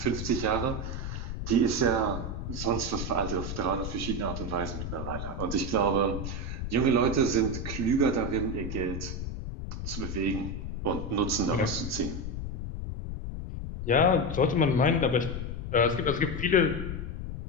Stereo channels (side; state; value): left; noise; rumble, 5 dB below the sound